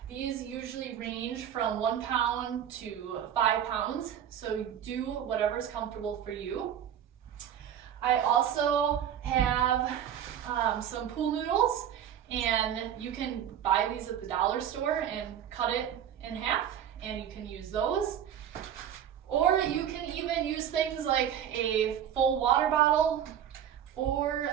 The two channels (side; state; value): left; quieter; 9.7 dB